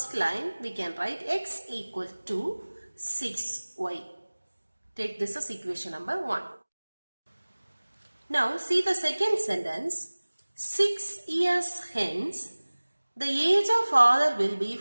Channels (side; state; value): both; inverted; correlation -1.00